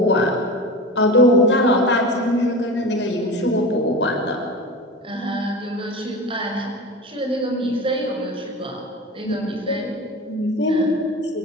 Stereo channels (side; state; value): both; normal; correlation 0.30